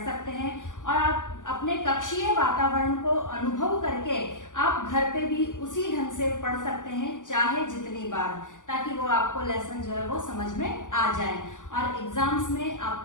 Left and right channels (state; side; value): late; right; 0.87 ms